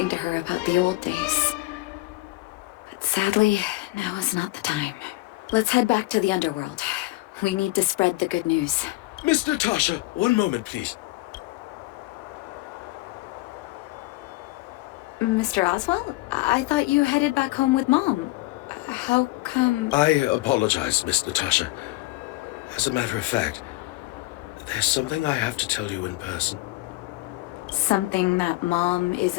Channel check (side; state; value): right; quieter; 20.4 dB